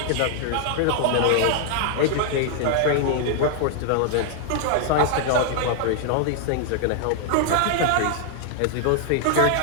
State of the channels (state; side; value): different; both; correlation -0.01